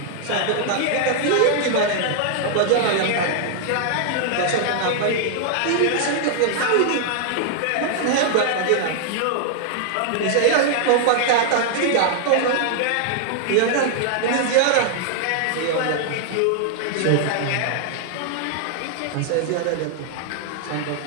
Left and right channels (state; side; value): different; both; correlation -0.01